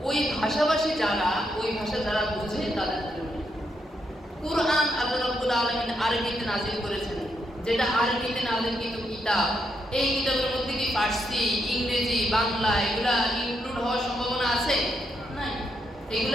ওই ভাষাভাষী যারা, ওই ভাষা যারা বোঝে তাদের জন্য। কুরআন আল্লাহ রাব্বুল আলামিন আরবিতে নাজিল করেছেন, যেটা আরবিতে নাজিলকৃত কিতাব। এই কিতাবের মধ্যে কি ফার্সি, ইংরেজি, বাংলা এগুলা ইনক্লুড হওয়ার সম্ভাবনা আছে? নাই।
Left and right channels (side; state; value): both; normal; correlation 0.79